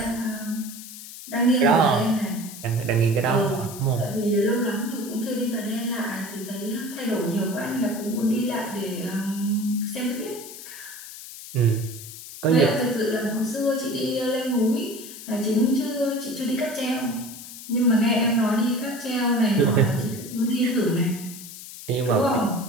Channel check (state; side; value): noise; left; hiss, 13 dB below the sound